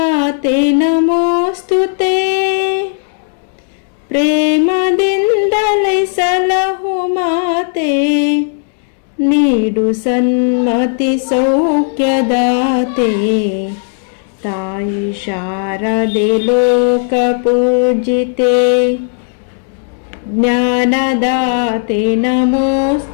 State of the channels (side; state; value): right; silent; digital silence